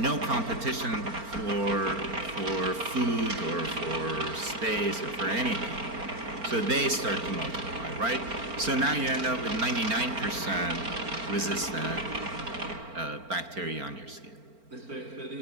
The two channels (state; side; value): late; left; 4.4 ms